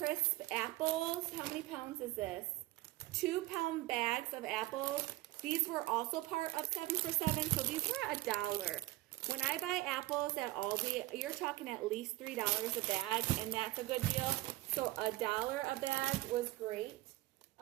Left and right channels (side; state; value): left; quieter; 18.3 dB